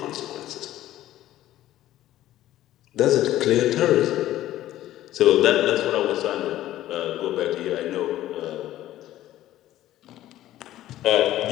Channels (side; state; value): right; quieter; 13.9 dB